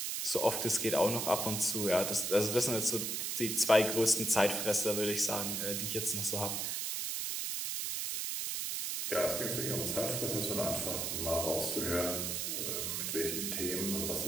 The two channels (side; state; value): right; noise; hiss, 1 dB below the sound